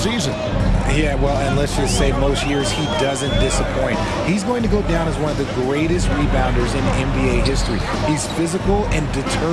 Yeah, well, and let's just say most years he doesn't disappoint. He's going to go down as one of the greatest rebounders in NBA history. He's physical and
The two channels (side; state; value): both; identical; correlation 1.00